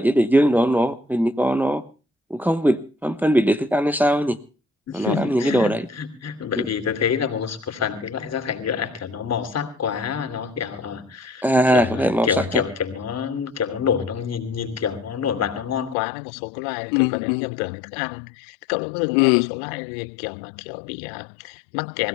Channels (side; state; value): right; drops out; at 16.0 s